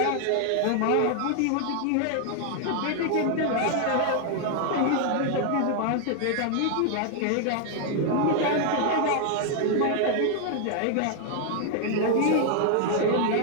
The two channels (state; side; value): different; both; correlation 0.00